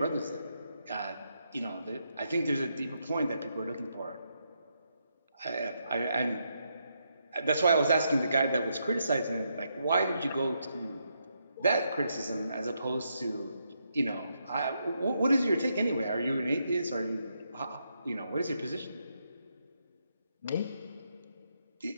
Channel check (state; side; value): inverted; both; correlation -0.80